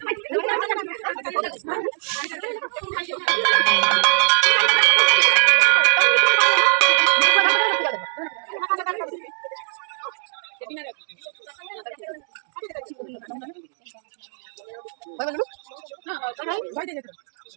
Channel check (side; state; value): left; silent; digital silence